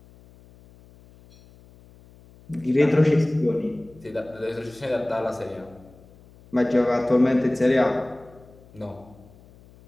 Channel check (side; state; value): left; noise; hum, 25 dB below the sound